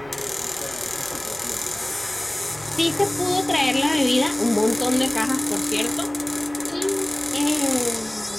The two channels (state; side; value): noise; right; hum, 23 dB below the sound